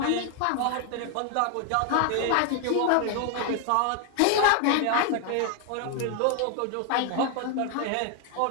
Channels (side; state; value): both; different; correlation 0.01